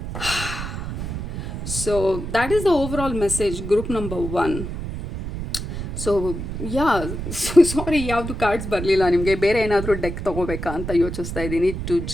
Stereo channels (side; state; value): right; noise; rumble, 6 dB below the sound